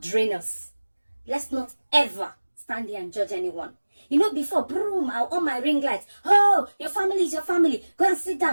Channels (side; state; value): both; inverted; correlation -1.00